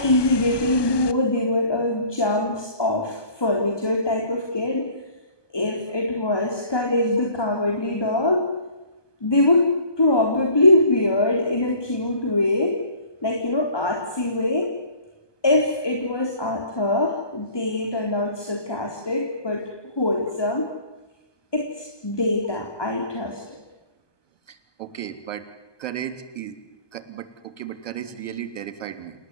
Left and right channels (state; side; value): late; right; 1.2 ms